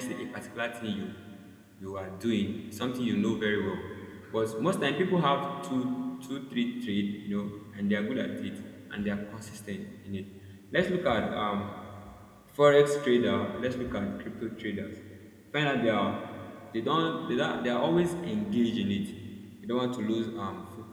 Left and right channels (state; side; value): identical; both; correlation 1.00